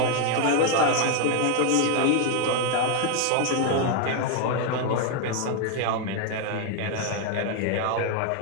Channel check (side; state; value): both; different; correlation 0.01